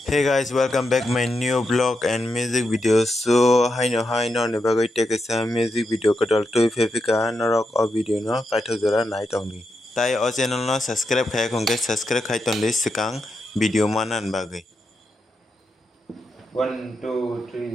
Hey guys, welcome back my new vlog and music video. So hi no nebagai take a music video kadal to fefika norok o video no paitho jora night only. Tai o channel no subscribe khai kongke subscribe khai ton list sikang video manan bagai. 1 2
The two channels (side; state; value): both; normal; correlation 0.85